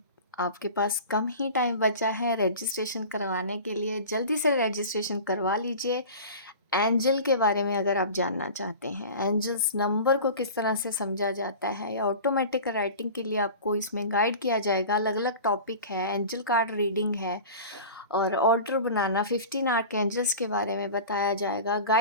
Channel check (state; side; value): inverted; both; correlation -0.36